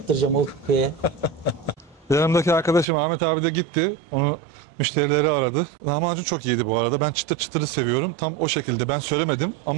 o köye. Yanımdaki arkadaşım Ahmet abi de gitti. Onu müşterileri aradı. Lahmacun çok iyiydi bu arada. Ben çıtır çıtırı seviyorum. Tam o şekilde. Ben söylemedim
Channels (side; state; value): left; drops out; at 2.9 s